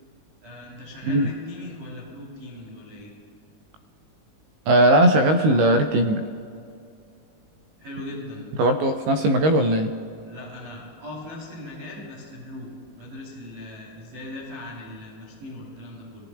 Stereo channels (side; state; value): left; late; 19 ms